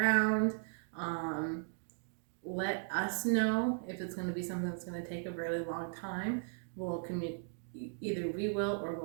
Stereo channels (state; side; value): silent; left; digital silence